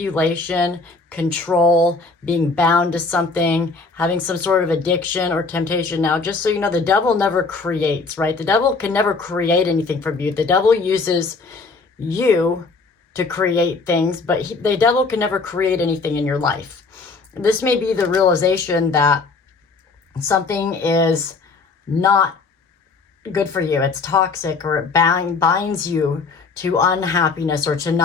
control, being bound to something, having some sort of addiction or temptation. Now, just so you know, the Devil never creates, right? The Devil can never create anything from you. The Devil uses you to create things, but the Devil can never create anything in your life. This may be the realization that something is not good for you. It's toxic, or it binds you to unhappiness or to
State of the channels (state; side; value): quieter; right; 4.2 dB